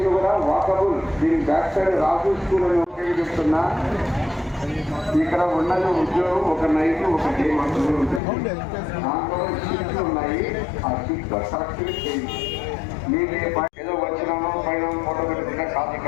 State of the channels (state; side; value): drops out; right; at 8.2 s